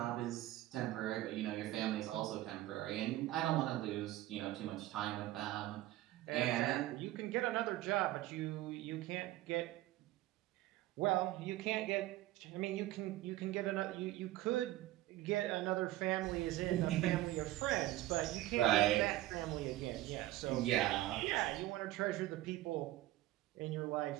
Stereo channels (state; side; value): quieter; left; 15.8 dB